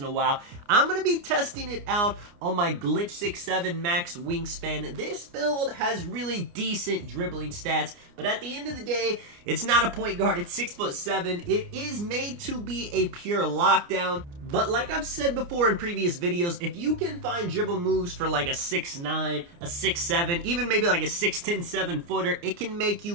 a while. I'm going to be testing it out on my Glitch 6'7 Max Wingspan. This build has really decent dribbling stats, but at the end of the day, it's not a point guard. It's 6'7". It is made to be a pure lockdown. But like I've said before in previous videos, if you can find dribble moves for like a 6'9", a 6'7", even maybe like a 6'10", 7-footer, it can make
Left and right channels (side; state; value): left; late; 29 ms